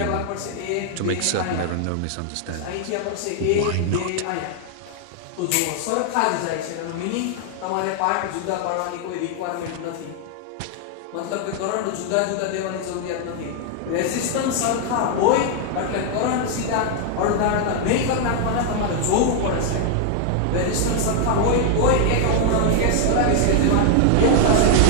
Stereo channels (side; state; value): both; different; correlation 0.00